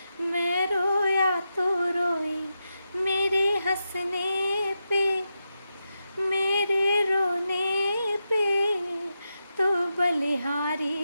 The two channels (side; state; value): both; inverted; correlation -0.88